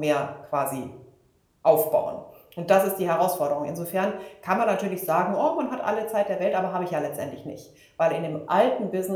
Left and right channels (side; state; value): both; identical; correlation 1.00